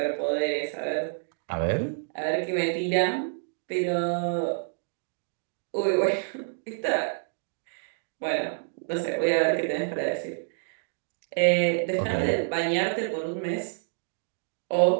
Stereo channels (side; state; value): left; silent; digital silence